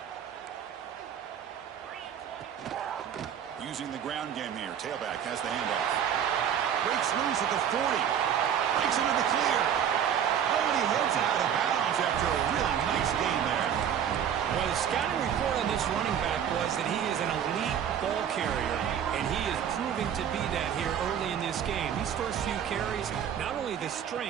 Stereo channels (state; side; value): quieter; left; 8.9 dB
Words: Using the ground game here. Tailback has the handoff. Breaks loose at the 40. Breaks into the clear. Oh, and he heads out of bounds after a really nice gain there. Well, the scouting report on this running back was that he is an elite ball carrier, and he is proving to be that here early in this game. These first few carries, not only the